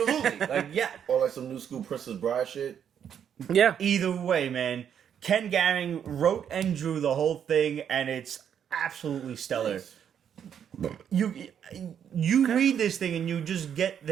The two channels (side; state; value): left; quieter; 8.6 dB